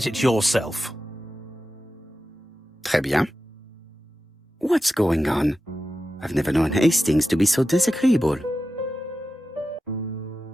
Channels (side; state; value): both; normal; correlation 0.92